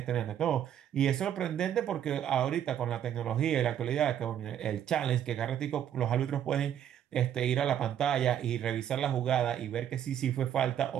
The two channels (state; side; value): quieter; left; 10.0 dB